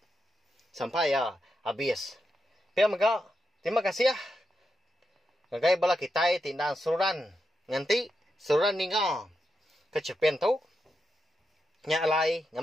sampai ya habis. Pemgak terima kasih ya. Ngagai bala kita tindang suran nganti suran ninga ke cerpen tu. Nya alai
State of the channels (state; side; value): normal; both; correlation 0.86